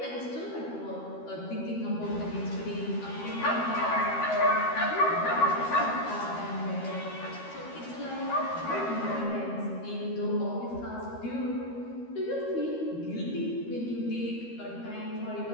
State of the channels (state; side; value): late; right; 13 ms